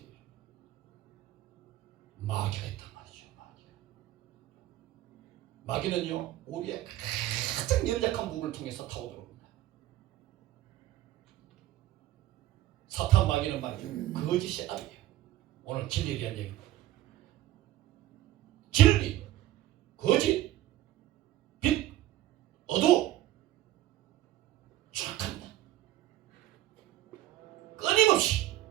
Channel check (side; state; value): left; quieter; 14.4 dB